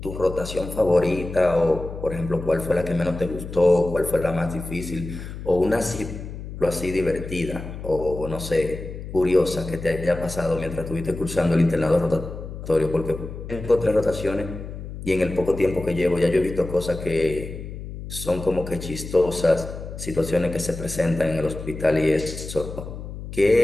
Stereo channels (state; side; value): noise; left; hum, 10 dB below the sound